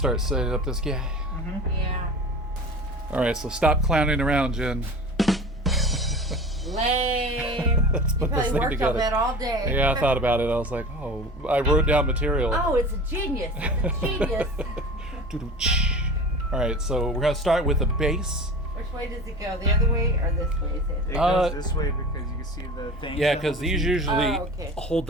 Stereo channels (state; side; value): normal; both; correlation 0.36